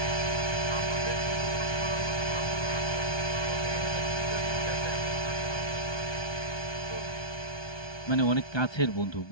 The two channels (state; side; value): late; right; 1.2 ms